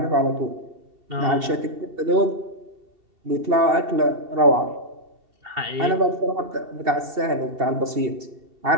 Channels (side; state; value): left; late; 2.7 ms